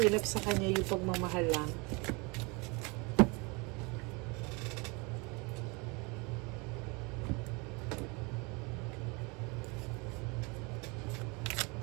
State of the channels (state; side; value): quieter; left; 28.7 dB